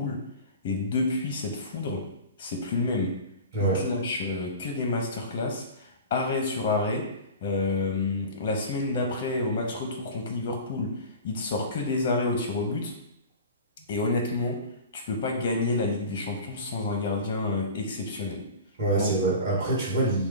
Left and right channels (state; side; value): inverted; both; correlation -0.35